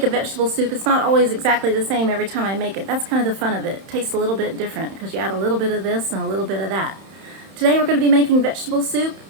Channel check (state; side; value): late; left; 31 ms